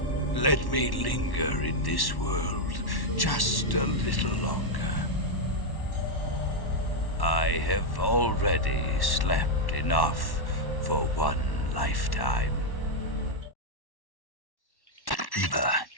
Let me linger in this world just a little longer. I have already slept enough for one lifetime. Eva,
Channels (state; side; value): late; right; 1.1 ms